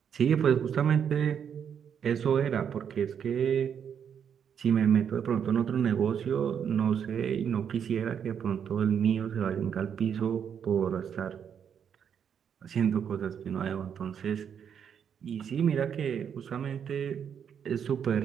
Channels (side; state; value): left; quieter; 7.9 dB